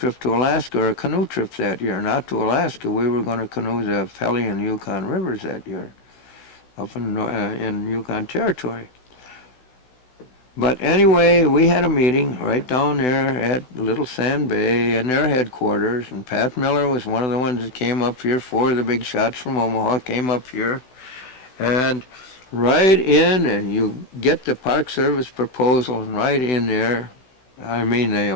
to Alaska, or a canoe trip that year. Not to Alaska. We were going to canoe the Pelly and Yukon rivers that year, up in Yukon Territory. But anyway, we had a meeting right down there at Little Sand Bay in their headquarters, and Pat Miller was one of the ones that came up here. 4 of the big shots from Omaha came up here. And right in, and you get the Park Service proposal, and right in there, the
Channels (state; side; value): late; right; 16 ms